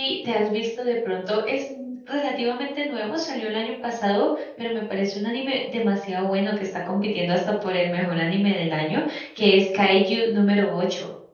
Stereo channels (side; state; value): both; identical; correlation 1.00